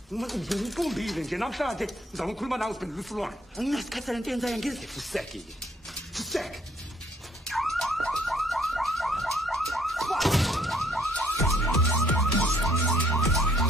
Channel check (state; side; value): normal; both; correlation 0.65